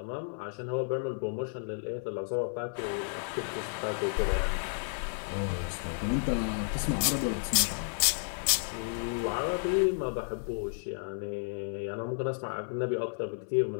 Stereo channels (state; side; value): silent; right; 56 dB below the other